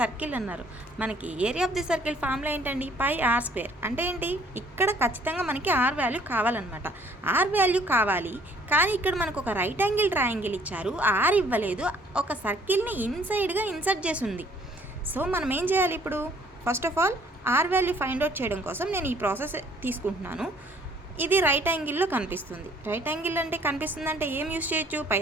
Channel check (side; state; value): both; normal; correlation 0.60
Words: అన్నారు. మనకి area of the circle formula ఏంటండి? పై ఆర్ స్క్వేర్. అంటే ఏంటి? ఇక్కడ ఖచ్చితంగా మనకి ఆర్ వాల్యూ కావాలన్నమాట. ఆర్ వాల్యూ కావాలి, కానీ ఇక్కడ మనకు ఒక రైట్ యాంగిల్ ట్రయాంగిల్ ఇచ్చారు, ఆర్ ఇవ్వలేదు, ఒక సర్కిల్ని ఇన్సైడ్గా ఇన్సర్ట్ చేసి ఉంది. సో మనం ఏం చేయాలి ఇప్పుడు? First of all, R value find out చేయడం కోసం నేను ఈ ప్రాసెస్ తీసుకుంటున్నాను. ఇది రైట్ యాంగిల్లో కనిపిస్తుంది. రైట్ యాంగిల్ అంటే కనిపిస్తుంది అంటే ఏం యూస్ చేయొచ్చు?